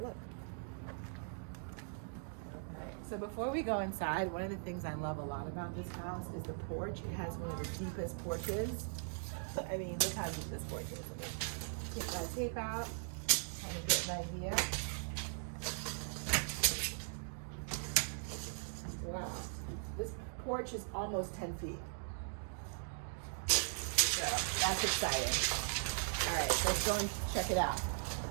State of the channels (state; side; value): silent; left; digital silence